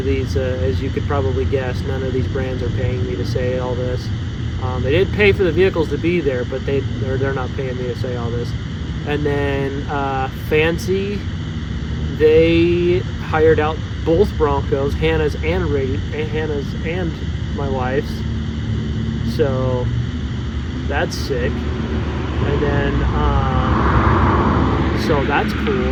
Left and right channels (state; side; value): identical; both; correlation 1.00